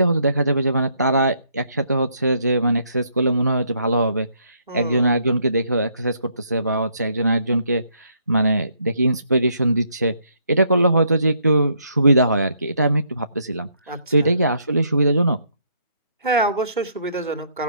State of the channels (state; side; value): inverted; both; correlation -0.71